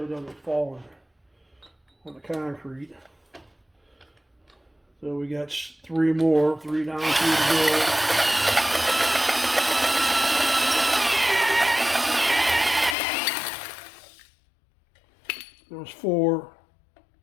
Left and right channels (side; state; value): right; drops out; at 13.0 s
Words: it doesn't fall on the concrete. So we got three more, three down, three to go. There's four.